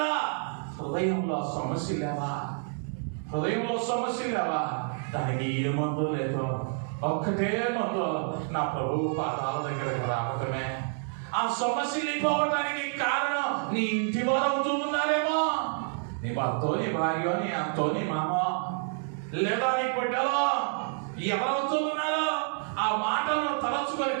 హృదయంలో సమస్య లేవా, హృదయంలో సమస్య లేవా, దానికి ఏ మందు లేదు. ఒక్కటే మందు, నా ప్రభువు పాదాల దగ్గరకు రావటమే. ఆ సమస్యలు పోవటానికి కారణం నీ ఇంటి వారు అవుతూ ఉన్నారేమో. నీ భర్తో, నీ భార్యో, నీ అత్తో, నీ మామో, లేదా నీ బిడ్డలో ఎవరవుతూ ఉన్నారో ఆ మాటలను తలచుకొని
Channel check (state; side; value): silent; left; 56 dB below the other